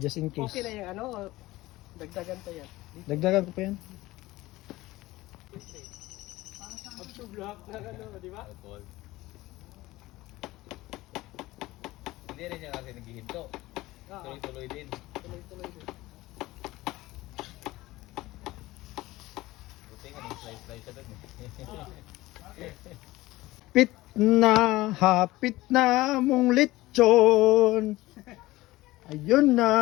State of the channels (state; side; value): quieter; right; 18.4 dB